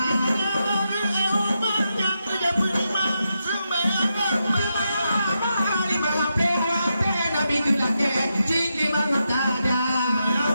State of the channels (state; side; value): inverted; both; correlation -0.85